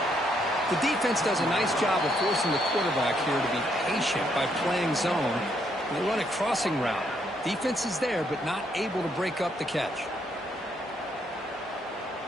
The defense does a nice job of forcing the quarterback here to be patient by playing zone. They run a crossing route. Defense is there, but not able to break up the catch.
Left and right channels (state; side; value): normal; both; correlation 0.74